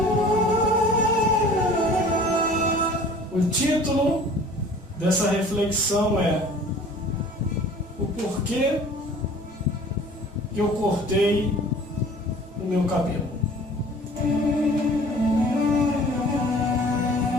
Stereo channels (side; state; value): both; normal; correlation 0.48